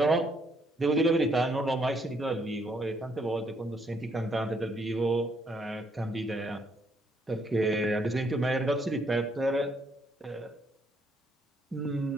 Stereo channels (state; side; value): normal; both; correlation 0.71